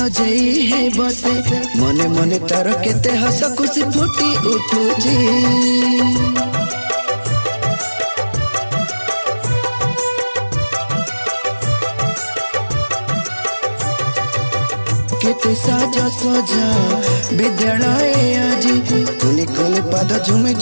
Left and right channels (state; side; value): inverted; both; correlation -1.00